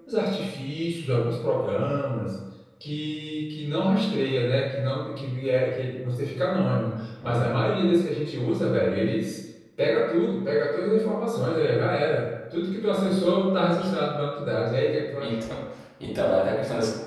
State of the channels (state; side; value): identical; both; correlation 1.00